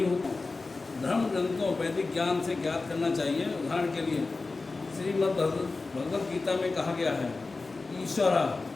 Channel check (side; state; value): right; quieter; 3.7 dB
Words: होता, धर्म ग्रंथों वैदिक ज्ञान से ज्ञात करना चाहिए। उदाहरण के लिए श्रीमद् भगवद गीता में कहा गया है, ईश्वर